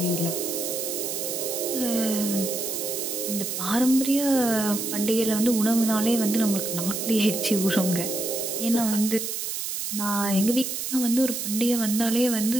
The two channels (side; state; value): right; noise; hiss, 4 dB below the sound